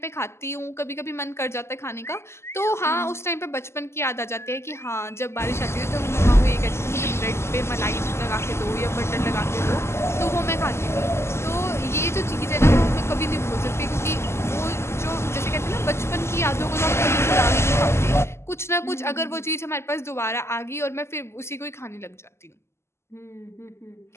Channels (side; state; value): right; late; 0.13 ms